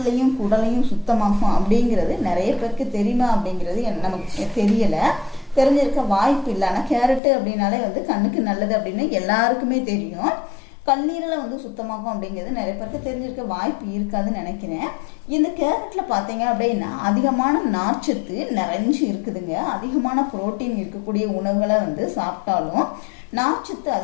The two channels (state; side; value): drops out; right; at 7.2 s